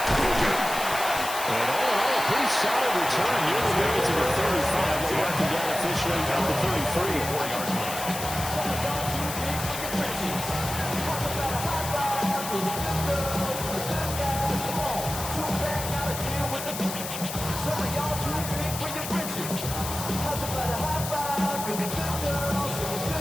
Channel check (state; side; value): noise; left; hiss, 7 dB below the sound